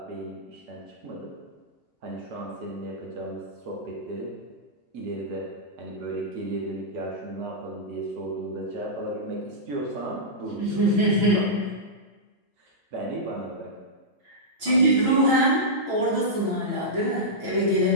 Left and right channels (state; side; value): late; left; 6.0 ms